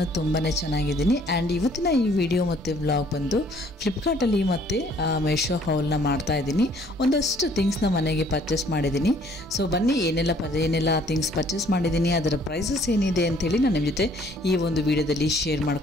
ತುಂಬಾ ಚೆನ್ನಾಗಿದ್ದೀನಿ. ಆ್ಯಂಡ್ ಇವತ್ತಿನ ಈ ವಿಡಿಯೋ ಮತ್ತು ವ್ಲಾಗ್ ಬಂದು ಫ್ಲಿಪ್ಕಾರ್ಟಲ್ಲಿ ಮತ್ತು ಮೀಶೋ ಹೌಲ್ನ ಮಾಡ್ತಾ ಇದ್ದೀನಿ. ಒಂದಷ್ಟು ಥಿಂಗ್ಸ್ನ ಮನೆಗೆ ಪರ್ಚೇಸ್ ಮಾಡಿದ್ದೀನಿ. ಸೊ ಬನ್ನಿ ಏನೆಲ್ಲ ಥಿಂಗ್ಸ್ ಪರ್ಚೇಸ್ ಮಾಡಿದ್ದೀನಿ, ಅದರ ಪ್ರೈಸಸ್ ಏನಿದೆ ಅಂಥೇಳಿ ನಾನು ನಿಮ್ಮ ಜೊತೆ ಈ ಒಂದು ವಿಡಿಯೋದಲ್ಲಿ ಶೇರ್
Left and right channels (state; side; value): normal; both; correlation 0.60